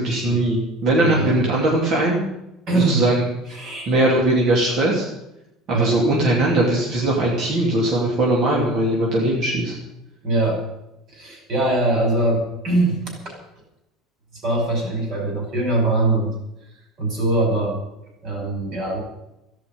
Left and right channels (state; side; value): normal; both; correlation 0.32